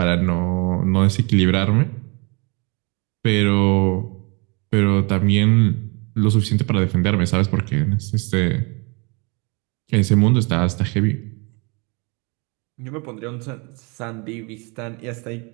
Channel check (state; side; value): quieter; left; 30.5 dB